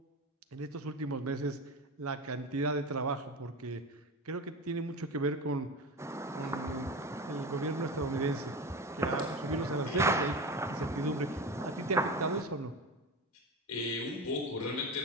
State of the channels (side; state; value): both; normal; correlation 0.26